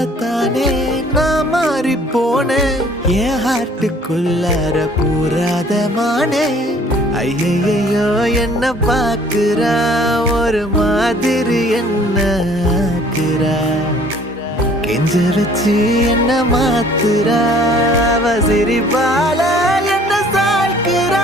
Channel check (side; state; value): both; normal; correlation 0.55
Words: தானே நான் மாறி போனேன் என் ஹார்ட்டுக்குள்ளார பூராத மானே ஐயையோ என்ன பாக்குறா ஒரு மாதிரி என்ன ஆக்குறா கெஞ்ச வச்சு என்ன மாத்துறா அவ சிரிப்பால என்ன